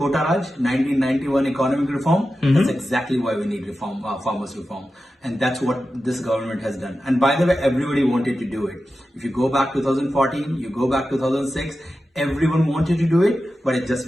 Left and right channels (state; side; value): normal; both; correlation 0.92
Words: Raj, 1991 economic reform? That's exactly why we need reform, farmers reform. And that's what this government has done. And by the way, everybody wanted to do it. If you go back 2014, you go back 2006, everyone wanted to do it, but it's just